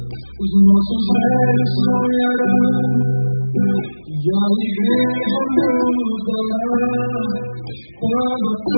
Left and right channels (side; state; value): both; inverted; correlation -1.00